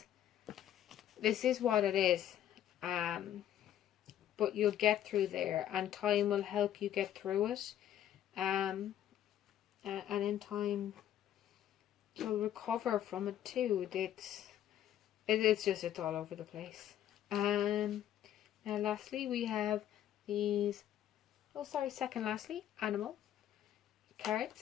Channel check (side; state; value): right; quieter; 11.3 dB